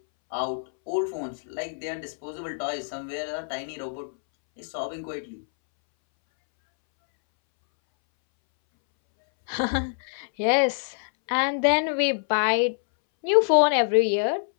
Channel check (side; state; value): right; silent; 61 dB below the other